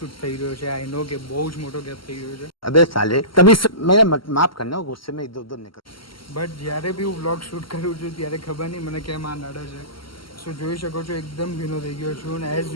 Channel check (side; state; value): right; late; 0.74 ms